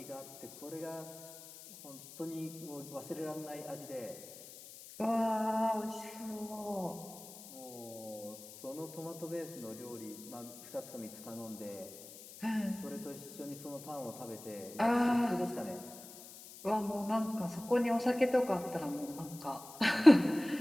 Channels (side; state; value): left; noise; hiss, 16 dB below the sound